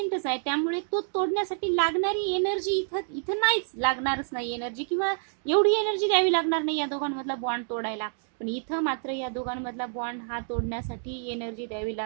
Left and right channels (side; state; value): left; silent; digital silence